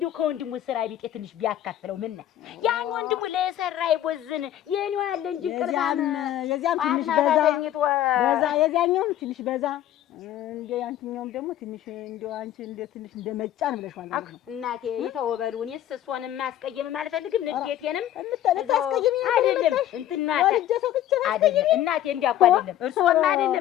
ከወንድሙ ስራ ቢጤ ትንሽ ቢያካፍለው ምን ነው ያን ወንድሙ ለሰራ ይቦዝን የኔው ያለ እንጂ ቅርባም የዚያም ትንሽ በዛ የዚያኛውም ትንሽ በዛ እንደ ያንቺኛውም ደግሞ ትንሽ እንደው አንቺ እንደ ትንሽ እንደ መጫን ብለሽ ማለት ነው። እናቴ ይተወበሉ እኔስ እሷንም ማስቀየም አልፈልግም። ንዴቴንም ታስቀየሚ አይደለም እንትናታ አይደለም እናቴ እንዲያውቁ አይደለም እርሶም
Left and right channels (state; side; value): quieter; right; 12.1 dB